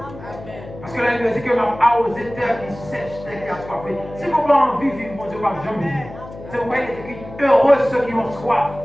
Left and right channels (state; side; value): noise; left; hum, 15 dB below the sound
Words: Parce que la Bible dit que même arroser terre qui sèche, terre qui a soifé. Si vous n'avez pas envie de vivre, mon Dieu, pas jamais vivre. C'est pourquoi il est écrit heureux ceux qui ont soif,